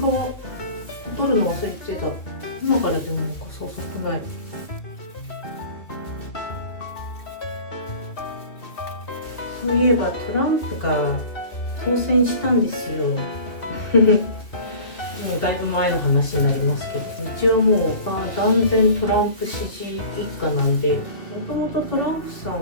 取るの忘れてた。今からでも遅くない。そういえばトランプが当選したんですよもうだいぶ前の話になりますけど、一応もう断然トランプ支持一家なんで、もともとトランプさん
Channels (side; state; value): right; late; 2.4 ms